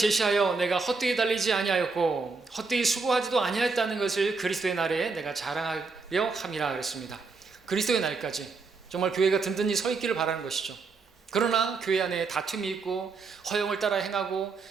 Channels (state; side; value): quieter; left; 4.4 dB